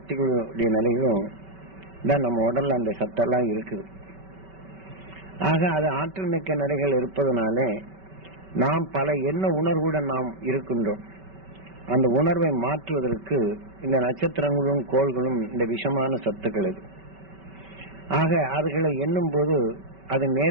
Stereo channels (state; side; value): late; left; 5.2 ms